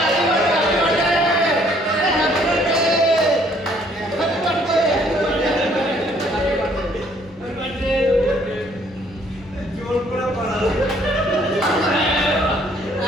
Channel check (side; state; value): both; normal; correlation 0.63